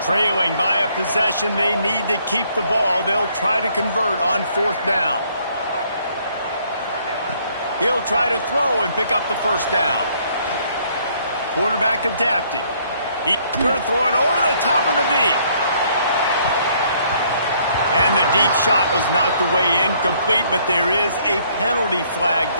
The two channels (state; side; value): inverted; both; correlation -0.65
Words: Trailing by a possession, they need to keep the ball. They'll try to convert on fourth down. He'll try to throw and pick up the first down. Quarterback adapting. He's going to throw it over the top of the D. And the deep shot was knocked away incomplete, but there is a penalty flag